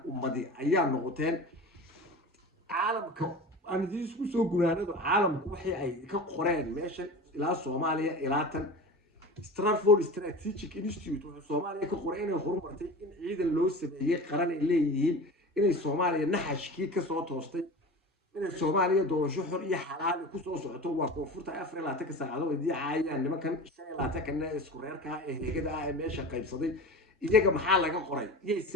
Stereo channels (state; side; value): normal; both; correlation 0.33